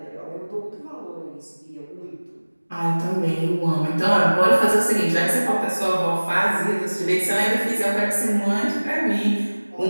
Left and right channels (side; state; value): both; inverted; correlation -1.00